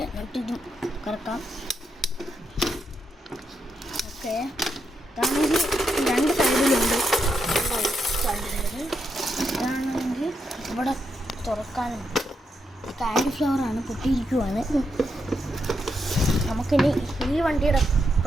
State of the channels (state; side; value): normal; both; correlation 0.82